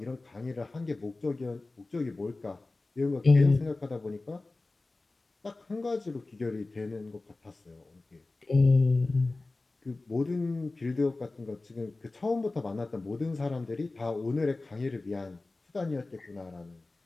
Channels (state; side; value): quieter; right; 3.2 dB